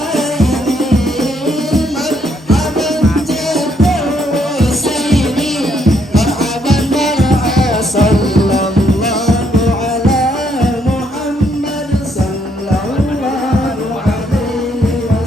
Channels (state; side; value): normal; both; correlation 0.72